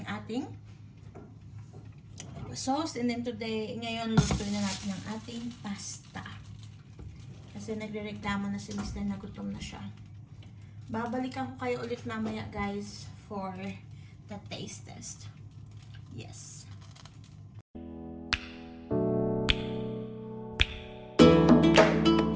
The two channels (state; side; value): identical; both; correlation 1.00